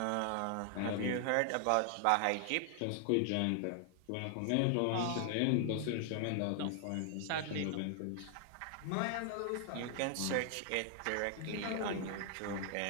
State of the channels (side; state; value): both; different; correlation 0.00